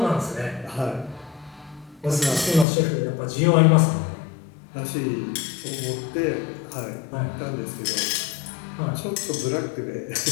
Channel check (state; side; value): drops out; right; at 2.7 s